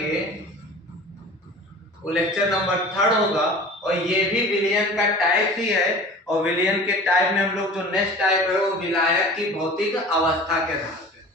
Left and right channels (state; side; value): normal; both; correlation 0.40